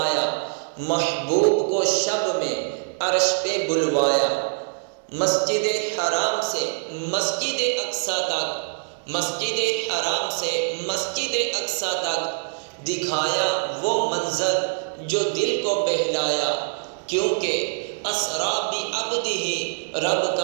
محبوب کو شب میں عرش پہ بلوایا، مسجد حرام سے مسجد اقصی تک، مسجد حرام سے مسجد اقصی تک دکھایا وہ منظر جو دل کو بہلایا، کیونکہ اسرا بعبدہ رب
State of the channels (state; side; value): silent; left; digital silence